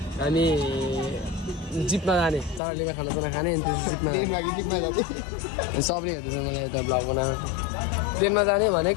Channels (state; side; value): drops out; right; at 2.6 s